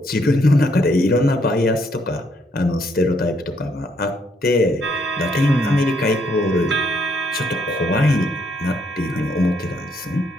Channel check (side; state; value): both; normal; correlation 0.72